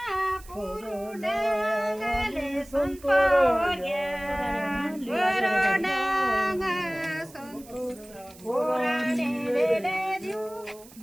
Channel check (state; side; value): noise; right; hiss, 22 dB below the sound